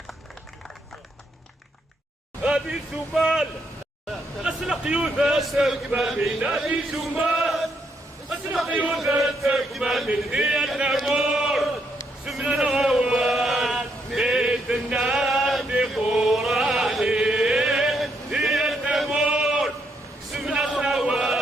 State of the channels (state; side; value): normal; both; correlation 0.76